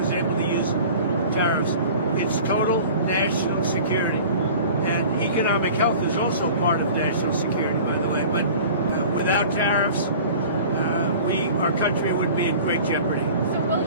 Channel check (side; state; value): both; inverted; correlation -0.42